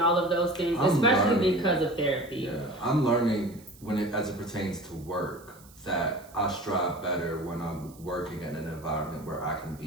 all of those things, especially because of therapy. Yeah, I'm learning as it pertains to work that I strive better when I'm working in an environment where I can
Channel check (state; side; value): noise; right; hiss, 24 dB below the sound